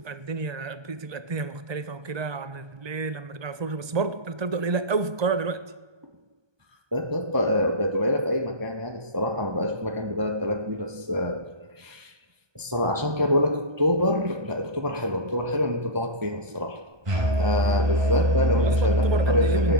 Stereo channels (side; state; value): left; late; 1.2 ms